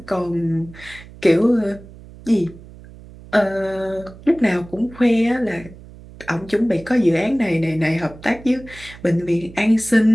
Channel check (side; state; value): right; noise; hum, 19 dB below the sound